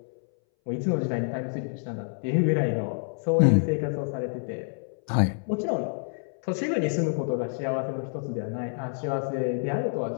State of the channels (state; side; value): silent; right; 60 dB below the other